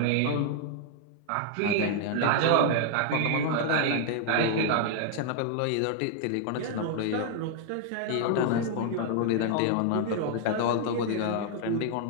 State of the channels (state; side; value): different; both; correlation 0.00